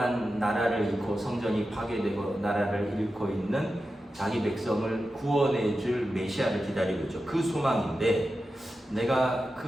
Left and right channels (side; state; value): both; normal; correlation 0.91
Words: 나라를 잃고 성전이 파괴되고 나라를 잃고 있는 자기 백성을 구원해줄 메시아를 기다리고 있죠. 그 소망인데 내가